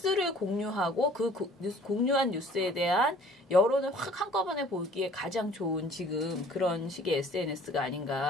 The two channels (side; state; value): both; normal; correlation 0.52